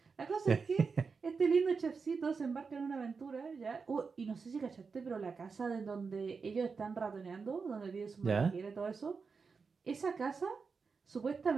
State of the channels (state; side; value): quieter; left; 5.1 dB